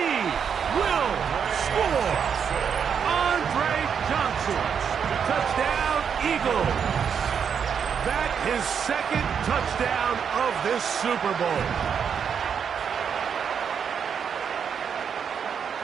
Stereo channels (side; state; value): left; quieter; 7.2 dB